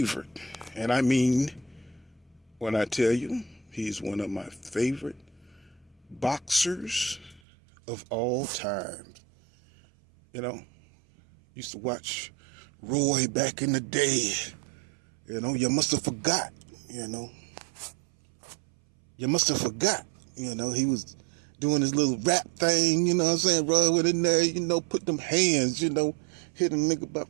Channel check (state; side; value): drops out; left; at 7.4 s